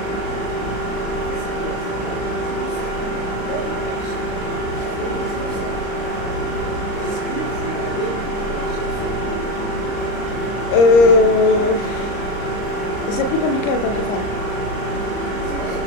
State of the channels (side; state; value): right; late; 39 ms